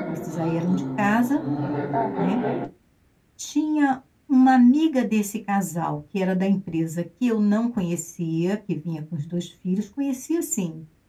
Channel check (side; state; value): both; identical; correlation 1.00